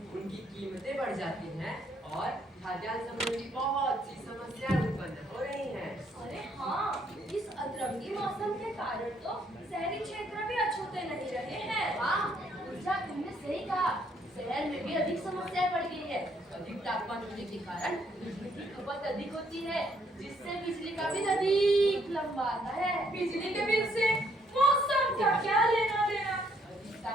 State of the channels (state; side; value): normal; both; correlation 0.69